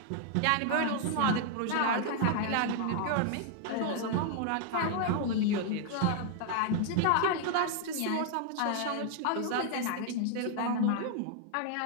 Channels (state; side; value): different; both; correlation 0.00